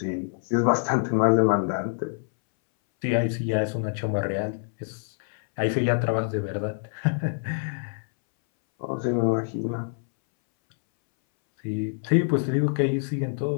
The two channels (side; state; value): right; silent; 61 dB below the other